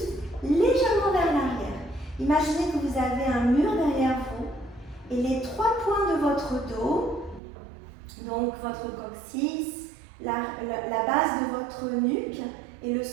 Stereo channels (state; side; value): drops out; left; at 7.4 s